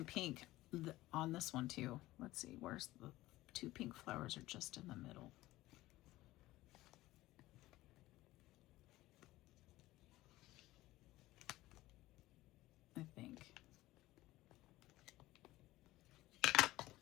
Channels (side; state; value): right; quieter; 17.3 dB